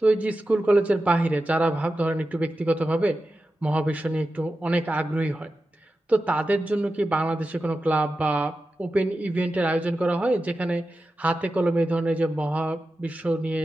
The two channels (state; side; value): normal; both; correlation 0.92